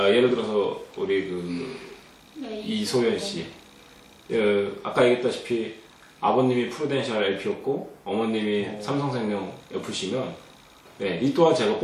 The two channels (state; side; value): identical; both; correlation 1.00